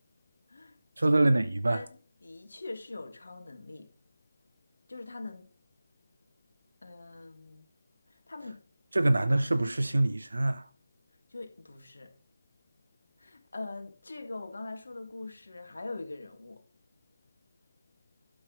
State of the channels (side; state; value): both; inverted; correlation -0.98